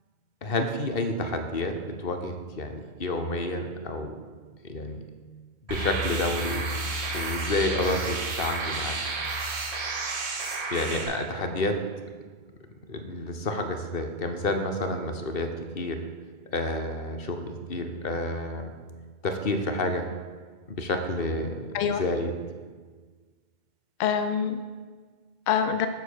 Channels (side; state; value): right; late; 2.1 ms